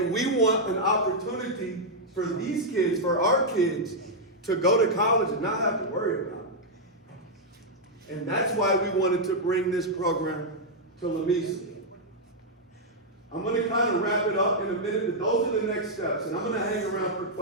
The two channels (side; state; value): both; normal; correlation -0.04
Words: we want an opportunity for these kids, for our kids, to go to college and not have to worry about it. And that's why we wanted to bring this program to Lamesa. I'm going to kind of wrap it up in a minute, but those are the next steps. And I'm going to hang around for